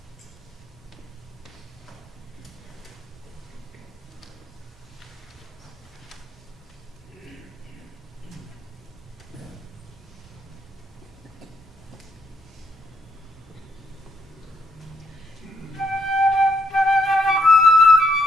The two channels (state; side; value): normal; both; correlation 0.74